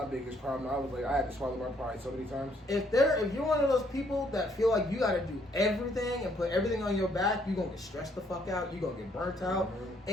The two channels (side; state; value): both; normal; correlation 0.68